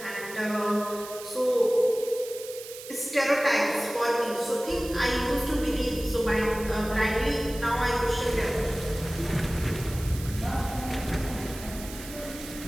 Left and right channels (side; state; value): right; noise; hiss, 13 dB below the sound